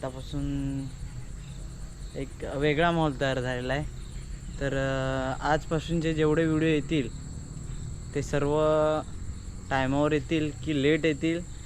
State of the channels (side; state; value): both; identical; correlation 1.00